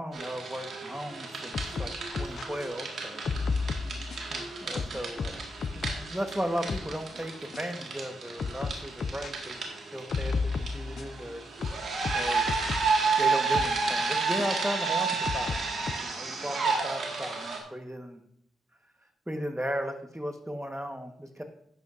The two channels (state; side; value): normal; both; correlation 0.79